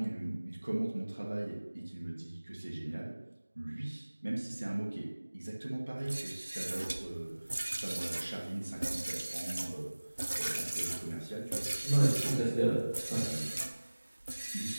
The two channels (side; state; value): both; inverted; correlation -1.00